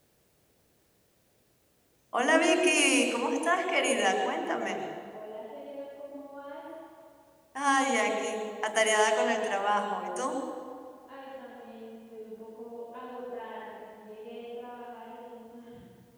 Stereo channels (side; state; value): both; identical; correlation 1.00